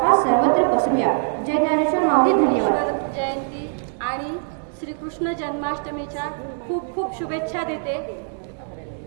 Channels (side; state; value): left; silent; 64 dB below the other